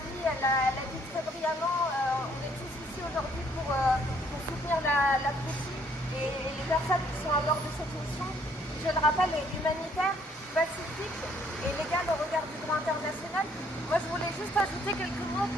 elle a dit très brillamment. On est tous ici aujourd'hui pour soutenir la Fletchie et les personnes qui sont à bord de cette mission. Je le rappelle, est humanitaire, pacifique et légale au regard du droit international. Moi, je voulais juste ajouter quelques mots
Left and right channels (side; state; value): both; normal; correlation 0.65